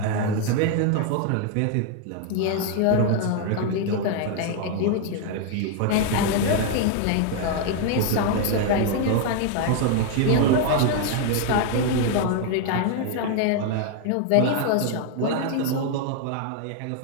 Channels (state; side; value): different; both; correlation 0.00